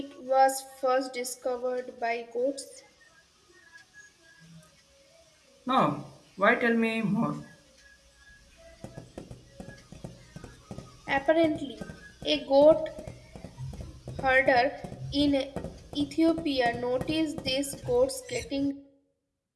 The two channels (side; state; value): both; identical; correlation 1.00